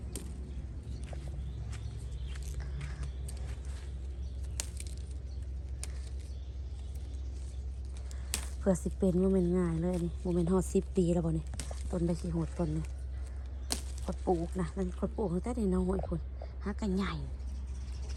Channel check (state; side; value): identical; both; correlation 1.00